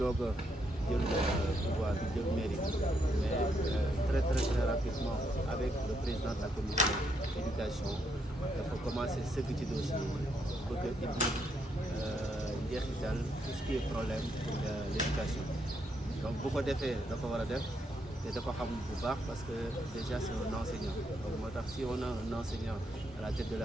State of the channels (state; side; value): normal; both; correlation 0.77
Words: a jël pouvoir bi jël mairie mais très rapidement avec le président de la commission d'éducation dafa commencé sëgg ci dossier bëgg a indi njeexital tout ce qui est problème pour l'éducation. Donc bu ko defee da ko war a def te da ko xam bu baax parce que déjà c'est un enseignant. Donc moo tax si on a un enseignant à la tête de